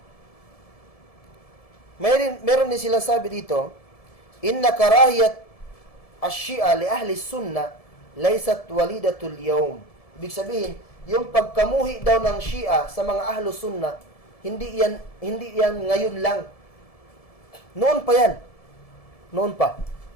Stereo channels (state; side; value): late; right; 1.7 ms